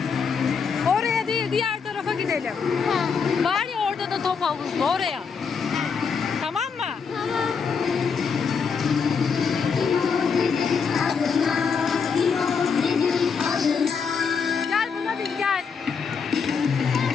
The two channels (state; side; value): quieter; right; 5.9 dB